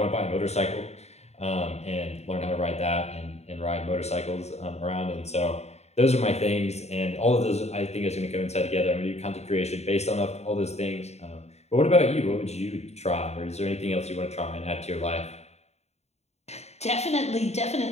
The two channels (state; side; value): late; right; 0.31 ms